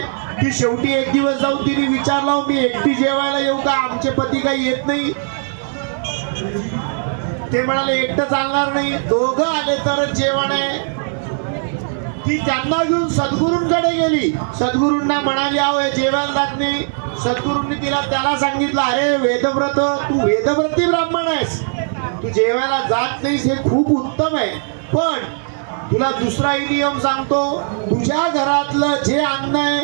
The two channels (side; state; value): left; silent; 59 dB below the other